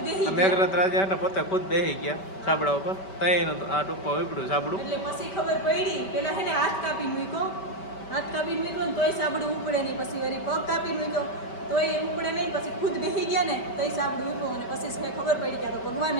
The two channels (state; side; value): late; right; 5.2 ms